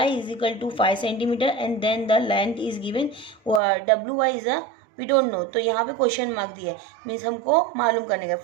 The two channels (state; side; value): drops out; left; at 3.6 s